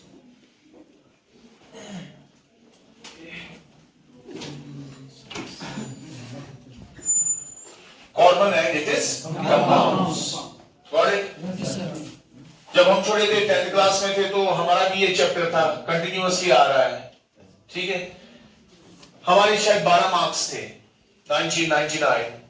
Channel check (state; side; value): identical; both; correlation 1.00